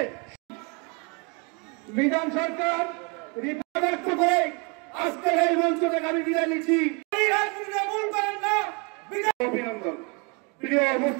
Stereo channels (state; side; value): quieter; left; 32.5 dB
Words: বিধান সরকার ব্যক্ত করে আজকের এই মঞ্চ থেকে আমি বিদায় নিচ্ছি। অভিনন্দন। প্রিয়